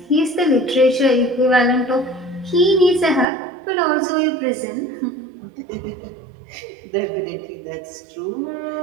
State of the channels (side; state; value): left; drops out; at 3.2 s